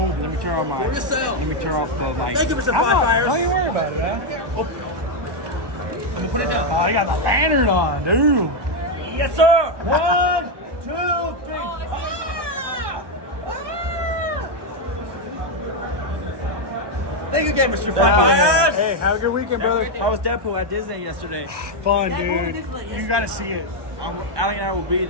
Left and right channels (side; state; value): left; late; 1.2 ms